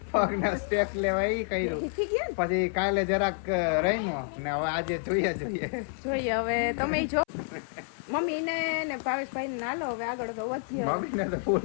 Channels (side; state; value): right; silent; 59 dB below the other